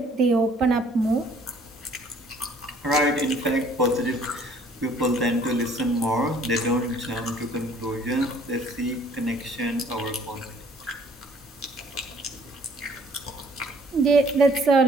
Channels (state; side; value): normal; both; correlation 0.58